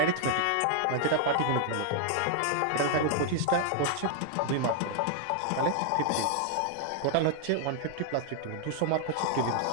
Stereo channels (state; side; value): different; both; correlation 0.00